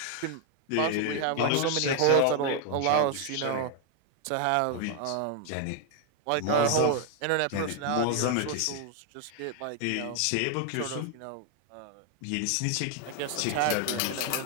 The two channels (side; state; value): both; different; correlation 0.00